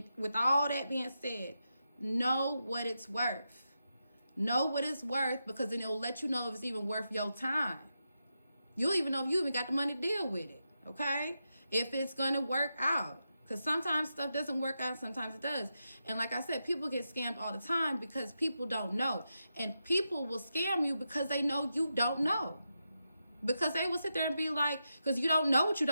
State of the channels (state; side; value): inverted; both; correlation -0.87